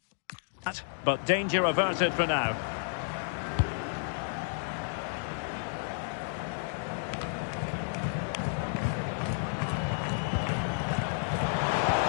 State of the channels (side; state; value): right; silent; digital silence